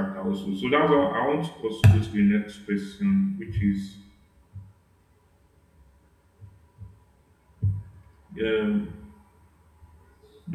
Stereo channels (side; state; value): both; identical; correlation 1.00